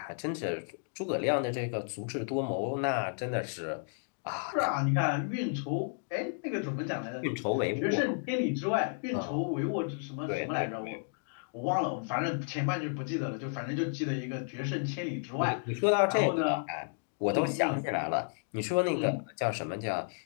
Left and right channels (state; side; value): silent; right; digital silence